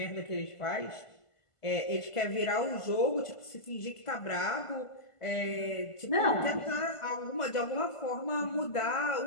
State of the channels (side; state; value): right; late; 1.5 ms